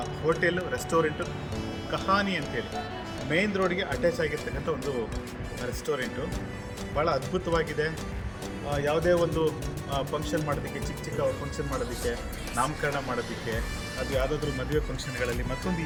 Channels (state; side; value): identical; both; correlation 1.00